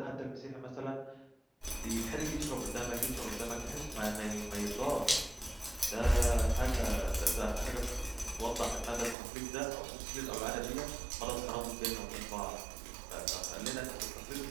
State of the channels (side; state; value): left; drops out; at 9.2 s